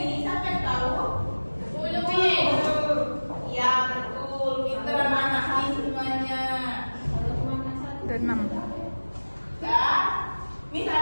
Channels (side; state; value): both; inverted; correlation -1.00